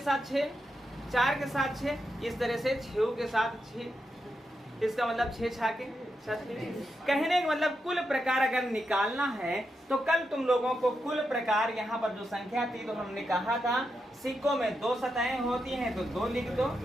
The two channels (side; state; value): both; normal; correlation 0.85